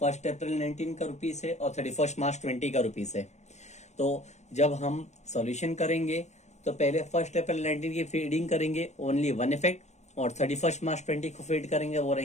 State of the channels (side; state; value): right; late; 0.33 ms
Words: अप्रैल 19 का रुपीस है और 31 मार्च 20 का रुपीस है। तो जब हम सॉल्यूशन करेंगे तो पहले 1 अप्रैल 19 की फीडिंग करेंगे, ओनली 1 इफेक्ट, और 31 मार्च 20 को फीड करेंगे, वो